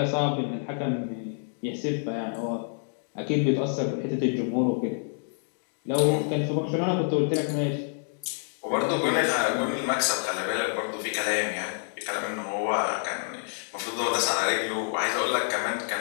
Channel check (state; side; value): silent; right; digital silence